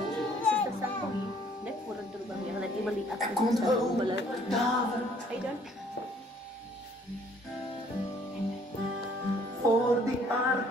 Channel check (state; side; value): normal; both; correlation 0.60